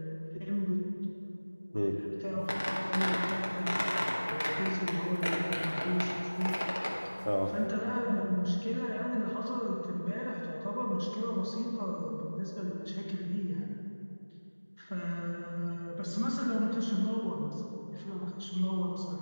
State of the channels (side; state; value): both; inverted; correlation -1.00